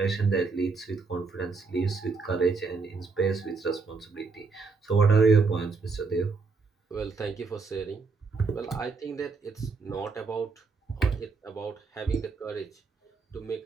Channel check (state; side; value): quieter; left; 4.5 dB